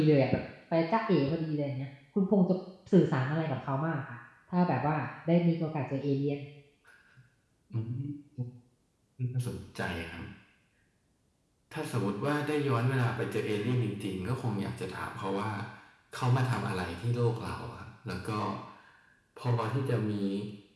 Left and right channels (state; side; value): identical; both; correlation 1.00